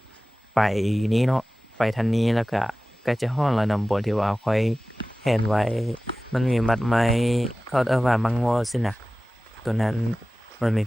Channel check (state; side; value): normal; both; correlation 0.97